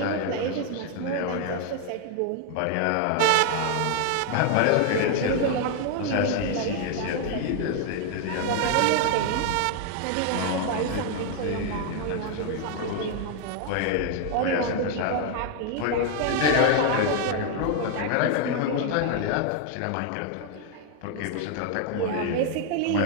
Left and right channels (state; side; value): different; both; correlation 0.00